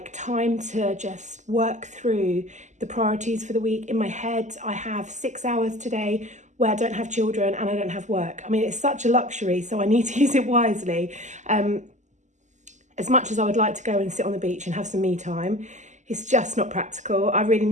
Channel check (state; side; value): late; left; 0.34 ms